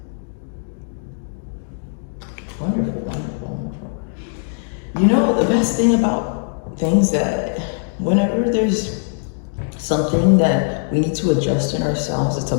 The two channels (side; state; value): right; silent; 65 dB below the other